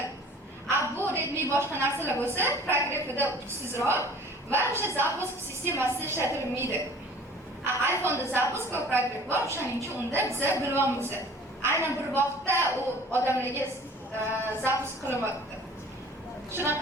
Bu Redmi boshqa narsalar bo'lsa, progressida kuchsizroq va o'sha zapusk sistemasida ishlatilmaydi. iPhone'da zapusk va progress bor, shuning uchun unda biz bilyapmiz. Aynan bir vaqtda u odamlarga zapusk qilinmoqda.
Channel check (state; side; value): normal; both; correlation 0.48